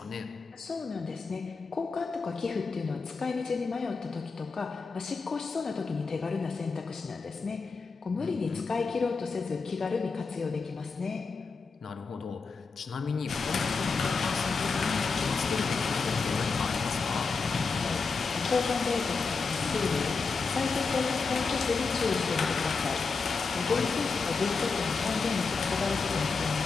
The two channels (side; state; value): right; quieter; 4.7 dB